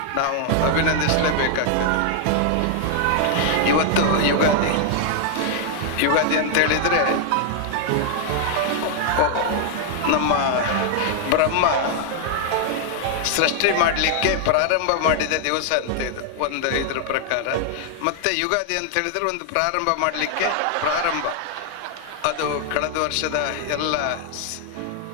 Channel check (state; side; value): different; both; correlation 0.00